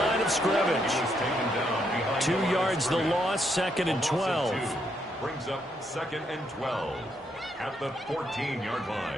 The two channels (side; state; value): both; normal; correlation 0.76